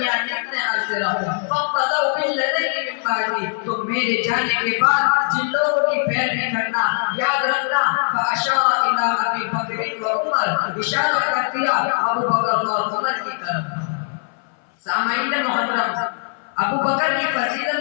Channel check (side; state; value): right; silent; 59 dB below the other